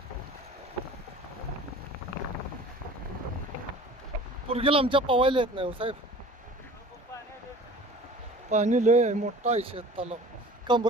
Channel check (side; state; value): both; normal; correlation 0.44